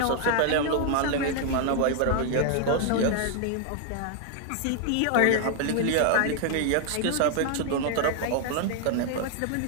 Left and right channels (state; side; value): different; both; correlation 0.00